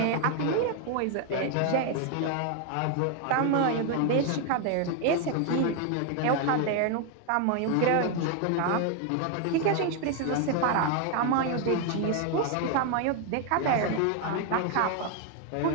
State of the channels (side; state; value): both; different; correlation 0.01